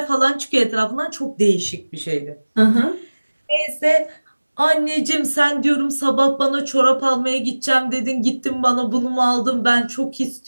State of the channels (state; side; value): inverted; both; correlation -1.00